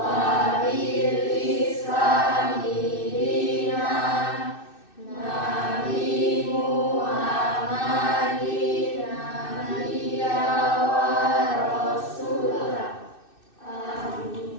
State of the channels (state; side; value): late; right; 2.6 ms